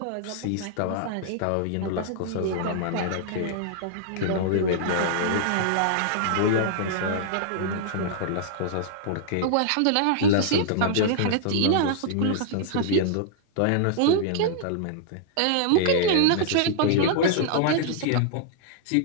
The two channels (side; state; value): both; different; correlation -0.01